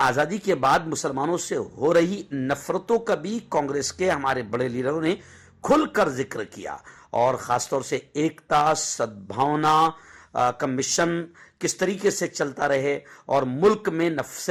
آزادی کے بعد مسلمانوں سے ہو رہی نفرتوں کا بھی کانگریس کے ہمارے بڑے لیڈروں نے کھل کر ذکر کیا، اور خاص طور سے ایکتا، سدبھاونا کا مشن کس طریقے سے چلتا رہے، اور ملک میں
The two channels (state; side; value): identical; both; correlation 1.00